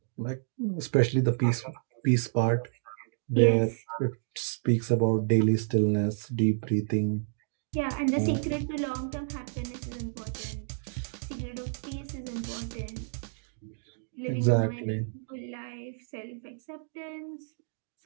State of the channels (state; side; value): silent; left; digital silence